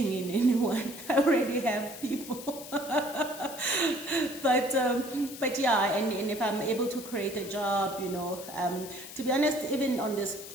in anyone. I already have people. But yeah, and if I'm able to create a job, to be honest, even on this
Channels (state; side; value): noise; left; hiss, 13 dB below the sound